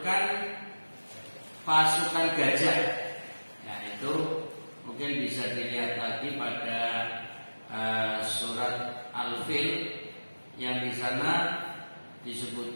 pasukan gajah. Nah, itu mungkin bisa dilihat lagi pada surat Al-Fil yang di sana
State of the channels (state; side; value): inverted; both; correlation -1.00